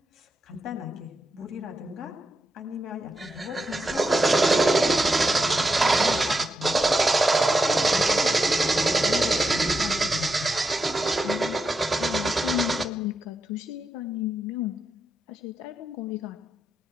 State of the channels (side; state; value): both; normal; correlation 0.85